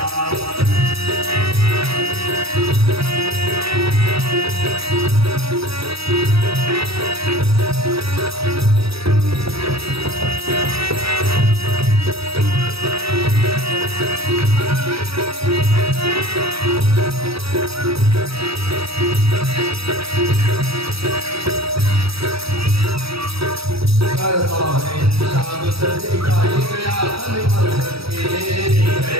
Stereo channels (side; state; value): left; late; 0.77 ms